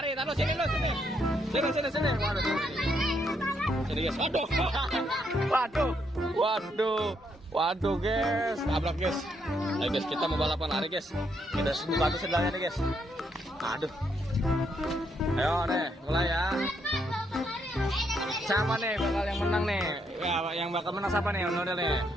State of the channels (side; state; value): both; normal; correlation 0.75